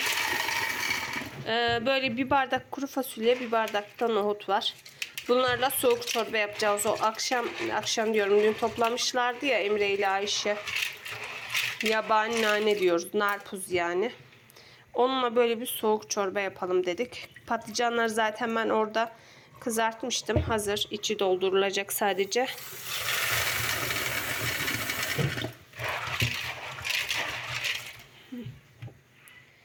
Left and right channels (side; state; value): both; identical; correlation 1.00